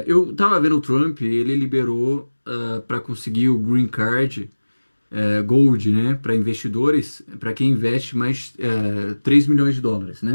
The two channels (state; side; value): inverted; both; correlation -1.00